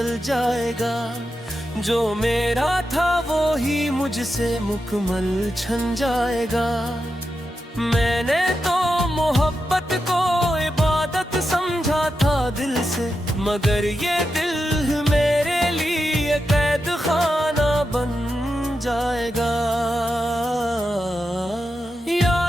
जाएगा, जो मेरा था वो ही मुझसे मुकम्मल छन जाएगा। मैंने तो मोहब्बत को इबादत समझा था दिल से, मगर ये दिल मेरे लिए कैद खाना बन जाएगा।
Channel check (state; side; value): normal; both; correlation 0.88